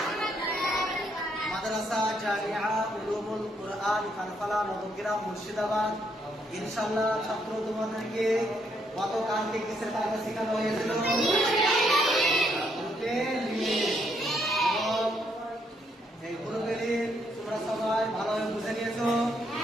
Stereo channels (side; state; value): both; normal; correlation 0.73